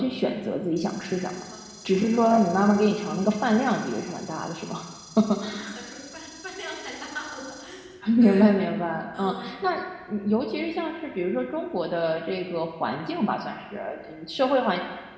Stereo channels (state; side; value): identical; both; correlation 1.00